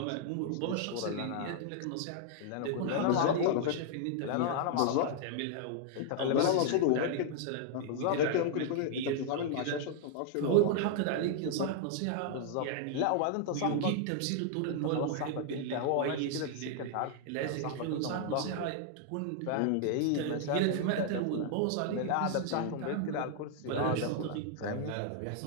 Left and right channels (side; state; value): both; different; correlation 0.00